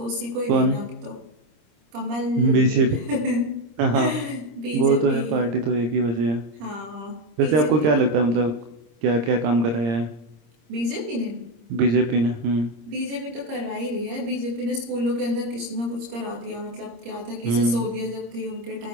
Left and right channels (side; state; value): left; late; 25 ms